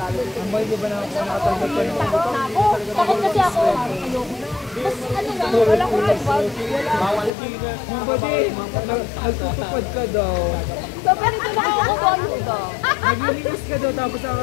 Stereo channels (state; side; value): drops out; right; at 7.3 s